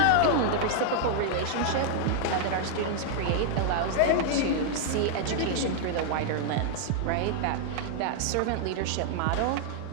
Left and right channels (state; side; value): different; both; correlation -0.01